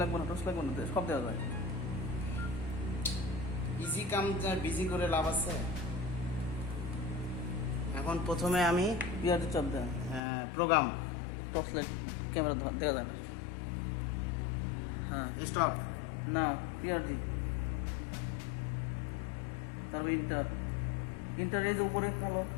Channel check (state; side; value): drops out; right; at 10.2 s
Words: লাগবে না, সব দেওয়া যায়। ইজি কাম বিজি করে লাভ আছে। এখন প্রথমে আমি পিআরটি চাপ দেন, প্রোগ্রাম টর্চ লাইট ক্যামেরা দেখা যায় না। হ্যাঁ স্টপ, না পিআরজি, তারপর ইন্টার এই যে উপরে কালো,